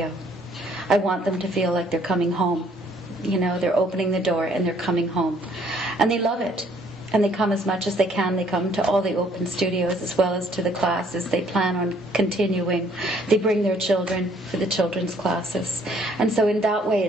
I want them to feel like they're coming home. You know, they're opening the door and they're coming home. And they love it. And they come as much as they can. They come to all the open studios as well as to the classes. They plan on continuing. They bring their children for the children's classes. And so in that way,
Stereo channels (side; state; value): both; normal; correlation 0.63